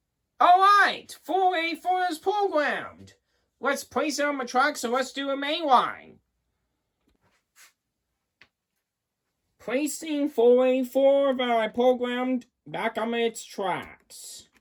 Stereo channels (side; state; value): both; identical; correlation 1.00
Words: Alright, 484 is programmed. Let's place it on the track, so let's do a mainline. Placing 484 that I programmed back on its tracks.